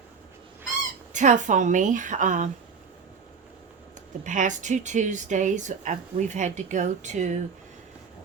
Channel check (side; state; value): left; quieter; 5.7 dB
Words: tough on me. The past 2 Tuesdays, we've had to go to